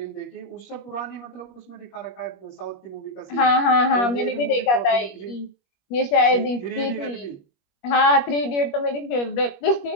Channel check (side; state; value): right; late; 21 ms